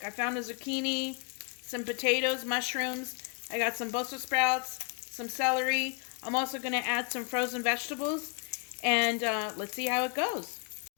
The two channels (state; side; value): quieter; right; 37.7 dB